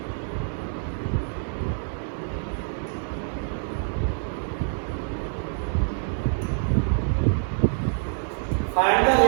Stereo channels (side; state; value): left; silent; digital silence